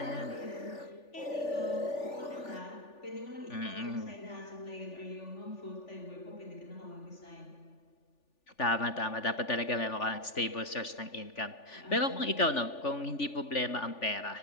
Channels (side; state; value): right; late; 3.4 ms